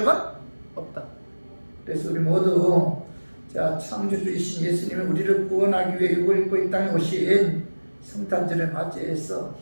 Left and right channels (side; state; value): both; inverted; correlation -1.00